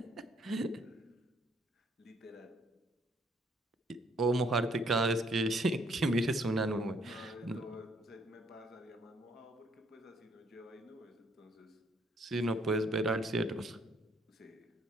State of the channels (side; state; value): both; normal; correlation 0.67